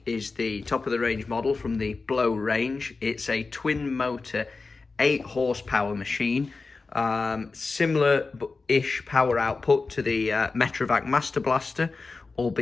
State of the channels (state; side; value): quieter; right; 4.0 dB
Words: is the top of the range model from the Blo range. It's a twin motor 8 horsepower machine, similar-ish power output to the Metrovac Master Blaster,